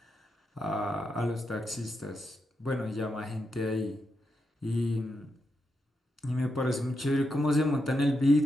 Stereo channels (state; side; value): normal; both; correlation 0.84